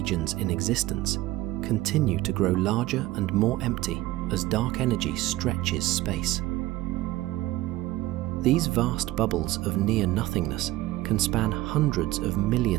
in existence, continue to grow larger and more empty as dark energy stretches space. These vast bubbles of near-nothingness can span hundreds of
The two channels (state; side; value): quieter; left; 17.1 dB